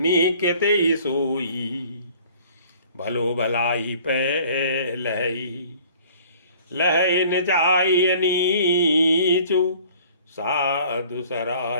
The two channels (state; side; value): inverted; both; correlation -0.51